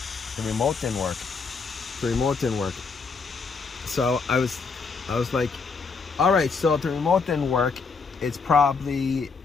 the remote didn't work. So I was like, all right, so if the remote didn't work, it's probably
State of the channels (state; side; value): quieter; right; 4.9 dB